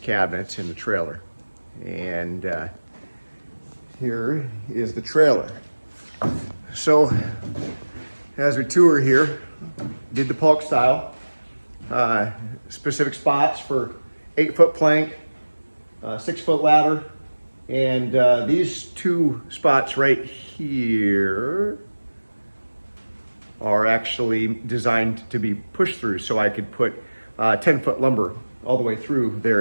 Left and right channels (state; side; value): inverted; both; correlation -1.00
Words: in the trailer. And here is the trailer. So as we tour here, did the Paulk style, specific spots for 8-foot plank, 6-foot ladder, and these two spots right here are actually designed to be pushed through, so I could put 10-foot lumber all the way through